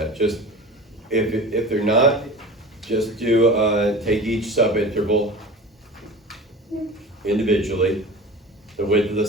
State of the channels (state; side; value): normal; both; correlation 0.36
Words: Just, if they're not, just do, take each subinterval individually. The width of the